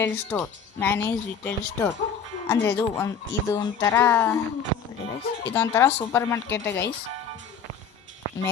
ಸ್ಟೋರ್ ಅಂದರೆ ಇದೊಂಥರ super market guys.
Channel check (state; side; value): quieter; right; 6.6 dB